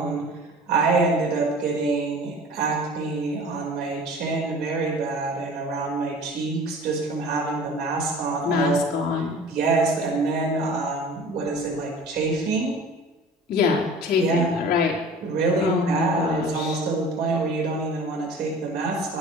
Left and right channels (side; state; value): both; normal; correlation 0.42